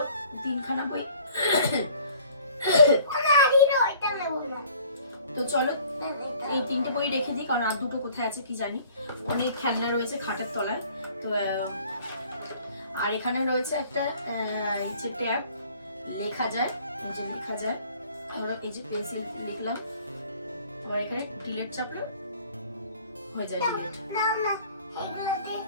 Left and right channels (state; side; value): inverted; both; correlation -0.53